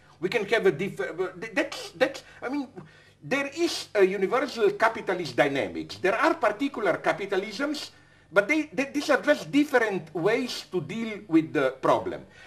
We can have a I mean, there is a universal capitalist dynamics. There are particular capitalisms, but these are just different ways to deal with the problem.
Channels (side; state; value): both; identical; correlation 1.00